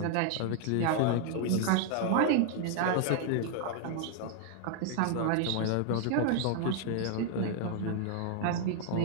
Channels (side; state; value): both; different; correlation 0.00